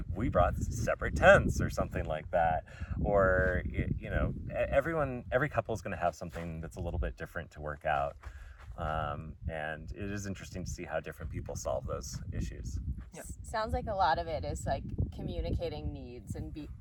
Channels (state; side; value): identical; both; correlation 1.00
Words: we brought separate tents or something like that. Or, you know, every couple is going to have something that's a little bit different to work out. And it is interesting to see how different people solve those issues. Yeah. Sounds like a lot of it is like communicating needs and